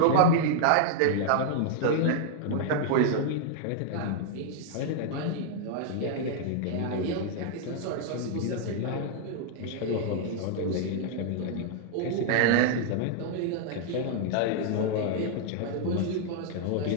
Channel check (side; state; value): both; different; correlation -0.01